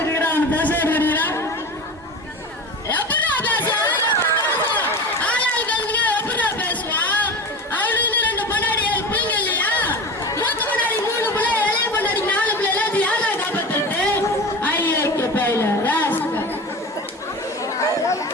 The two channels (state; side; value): normal; both; correlation 0.30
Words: இருக்கிற அவன் பேச எடுக்கிறீங்களா? எப்படா பேசுவான்? ஆளாளுக்கு எப்படா பேசுவான்? அவனுக்கு 2 பொண்டாடி 7 பிள்ளைங்க இல்லையா? மூத்த பொண்டாடி 3 பிள்ளை, இளைய பொண்டாடி 4 பிள்ளை. எல்லாத்தையும் யாரா காப்பாத்துறது? ஐயோ பையில ராஸ்கர்.